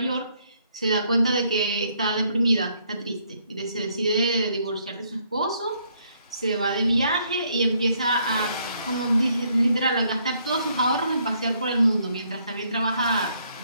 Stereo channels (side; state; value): both; inverted; correlation -0.70